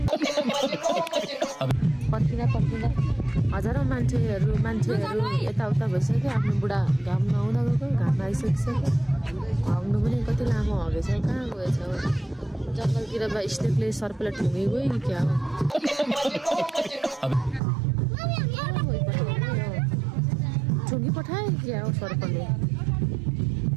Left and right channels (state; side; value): drops out; left; at 17.6 s